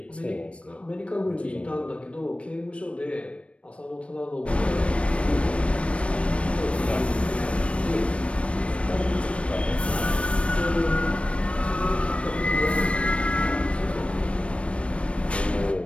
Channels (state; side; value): late; right; 0.061 ms